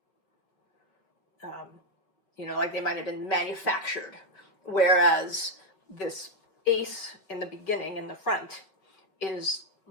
you know, like they might have been manufactured. Whereas this ace in the beginning, in the front, is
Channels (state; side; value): late; right; 5.2 ms